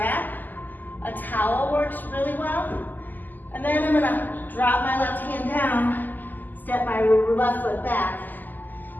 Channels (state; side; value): late; right; 0.086 ms